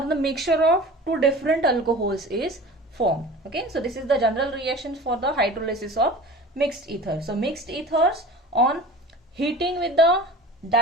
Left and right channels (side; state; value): both; normal; correlation 0.38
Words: mixture of two different alcohols is formed. Okay, so this is the general reaction for the hydrolysis of mixed ether. So mixed ethers on heating with the